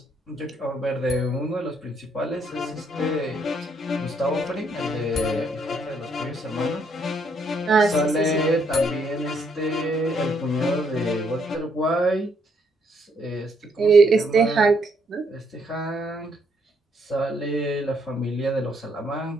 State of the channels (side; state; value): both; normal; correlation 0.71